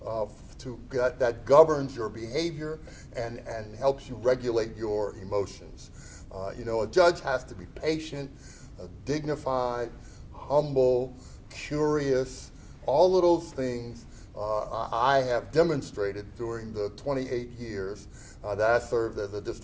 governs your behavior and helps you regulate your emotions. A judge has to be patient, dignified, humble, curious. All of those things I have demonstrated during the 28 years that I served as a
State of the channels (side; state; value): both; identical; correlation 1.00